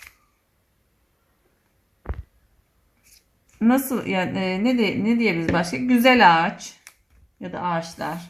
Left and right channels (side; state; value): both; identical; correlation 1.00